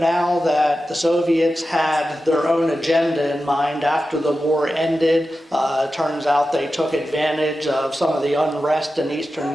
that the Soviets had their own agenda in mind after the war ended. It turns out they took advantage of some of the unrest in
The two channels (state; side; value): normal; both; correlation 0.92